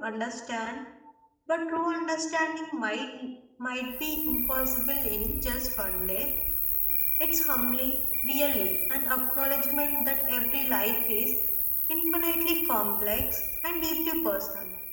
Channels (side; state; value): both; identical; correlation 1.00